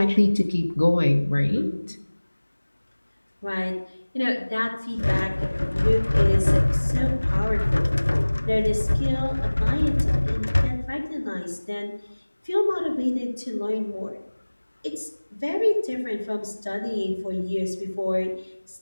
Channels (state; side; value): inverted; both; correlation -1.00